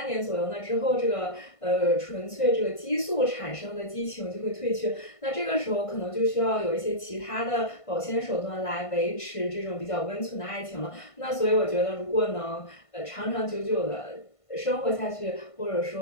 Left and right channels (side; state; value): right; late; 1.5 ms